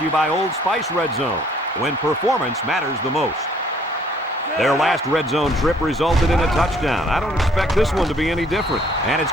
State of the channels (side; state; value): both; normal; correlation 0.60